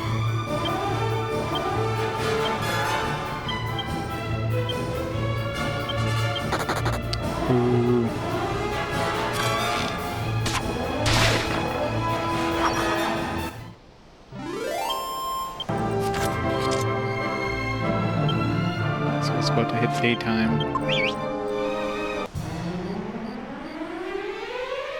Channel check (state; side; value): identical; both; correlation 1.00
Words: Ooh. So it's about to hit daytime.